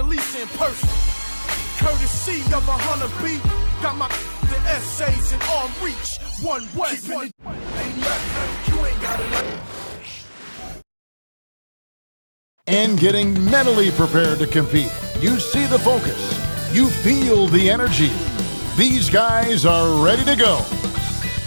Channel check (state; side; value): inverted; both; correlation -1.00